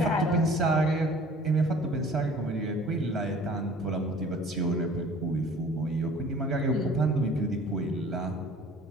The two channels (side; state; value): both; normal; correlation 0.49